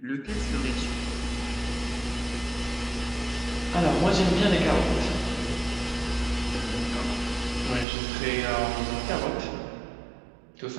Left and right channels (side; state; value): left; drops out; at 7.9 s